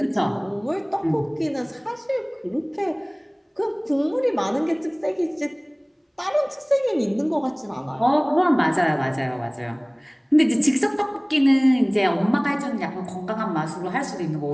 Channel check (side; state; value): both; identical; correlation 1.00